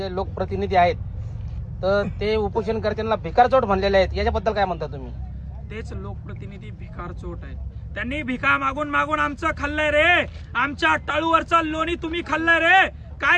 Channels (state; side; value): identical; both; correlation 1.00